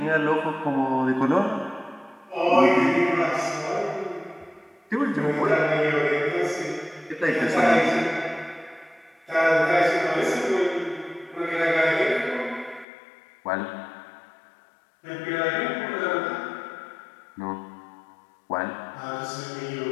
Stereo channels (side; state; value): right; drops out; at 12.9 s